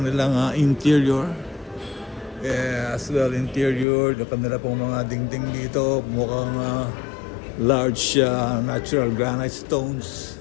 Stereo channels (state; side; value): drops out; right; at 3.9 s